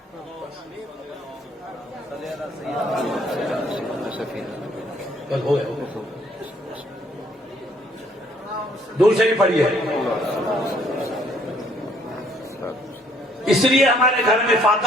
ہو گیا, دور شریف پڑھیے. اس لیے ہمارے گھر میں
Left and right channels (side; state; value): both; normal; correlation 0.64